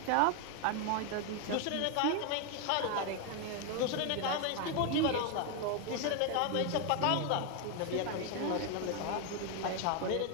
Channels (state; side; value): different; both; correlation 0.01